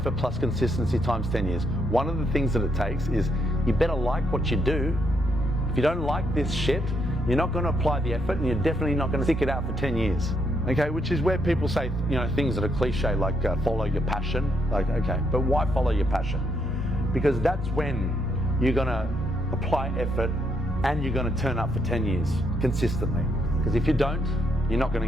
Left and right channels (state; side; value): normal; both; correlation 0.76